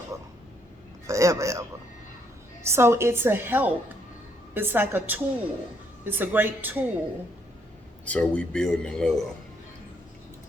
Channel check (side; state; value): both; normal; correlation 0.71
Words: So it's a help. It's like a tool. It's a great tool. So we building in love.